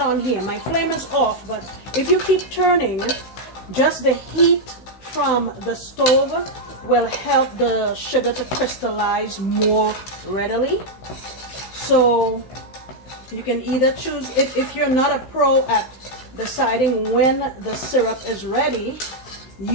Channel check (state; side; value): late; right; 15 ms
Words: here. My flame is off, but if you keep turning, just the heat from the stove will help the sugar to crystallize more readily. So You can either choose, if you're not a pro at deciding when the syrup is ready,